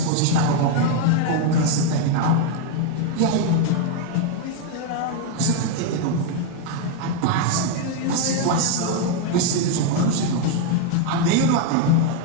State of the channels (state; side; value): different; both; correlation 0.01